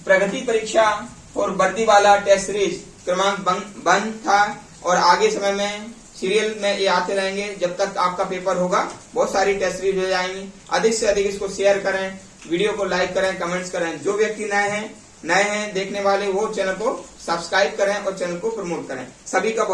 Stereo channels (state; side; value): identical; both; correlation 1.00